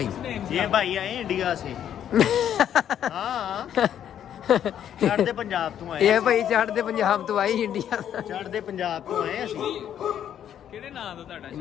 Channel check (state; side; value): quieter; right; 9.9 dB